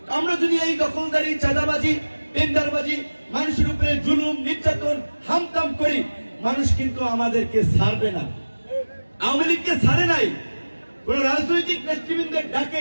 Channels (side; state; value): both; inverted; correlation -1.00